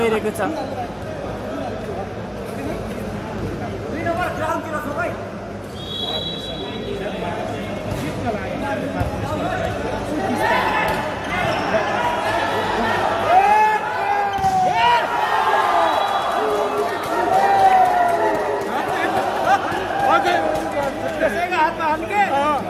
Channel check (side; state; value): both; identical; correlation 1.00